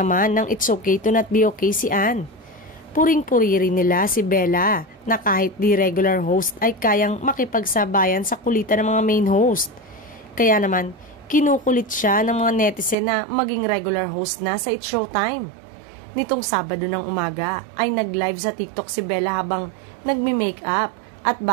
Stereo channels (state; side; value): drops out; left; at 13.0 s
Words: ng It's Okay to Not Be Okay si Ann. Puring-puri rin nila si Bella na kahit di regular host ay kayang makipagsabayan sa kulitan ng mga main host. Kaya naman, kinukulit siya ng mga netizen na maging regular host na sa It's Showtime. Nitong Sabado ng umaga ay nag-live sa TikTok si Bella habang nagme-makeup at